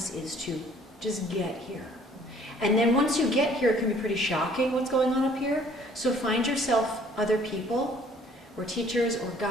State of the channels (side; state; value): both; normal; correlation 0.57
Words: is to just get here. And then once you get here, it can be pretty shocking what's going on up here. So find yourself other people, or teachers, or